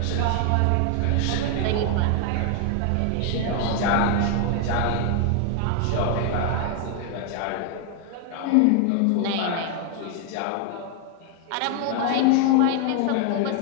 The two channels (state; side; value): different; both; correlation 0.00